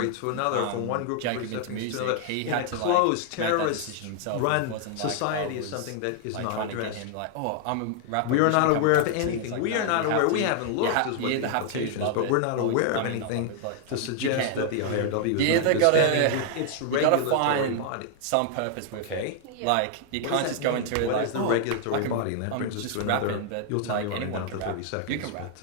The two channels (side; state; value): both; different; correlation 0.00